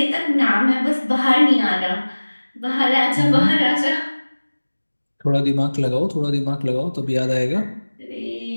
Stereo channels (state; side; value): inverted; both; correlation -1.00